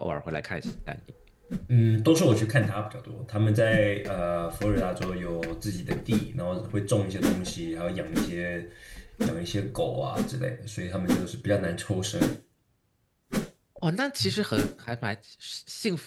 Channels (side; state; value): both; identical; correlation 1.00